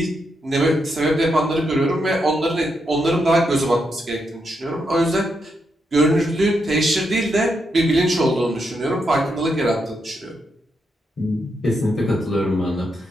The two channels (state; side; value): normal; both; correlation 0.82